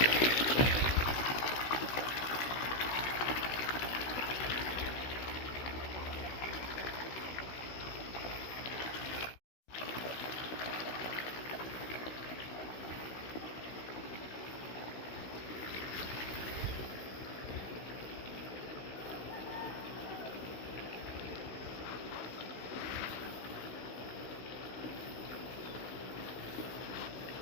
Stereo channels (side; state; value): right; late; 16 ms